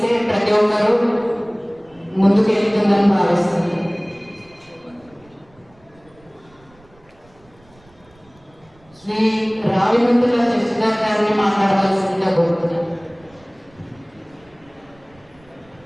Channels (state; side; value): noise; right; rumble, 30 dB below the sound